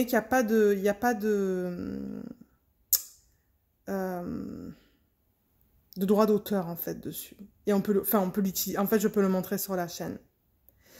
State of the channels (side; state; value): both; identical; correlation 1.00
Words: qu'il n'y a pas de droit d'auteur en fait dessus. Et on peut l'utiliser. En fait, je peux le montrer sur la chaîne.